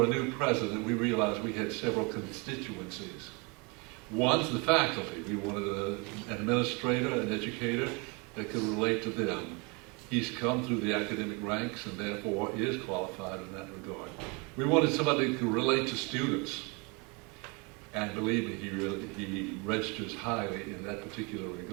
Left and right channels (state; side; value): quieter; left; 30.2 dB